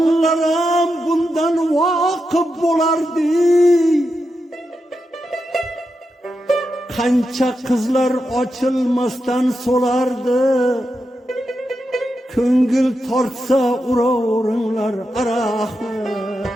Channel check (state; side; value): normal; both; correlation 0.87